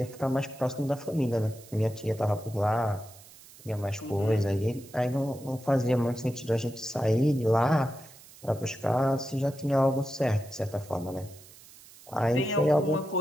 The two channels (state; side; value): noise; right; hiss, 21 dB below the sound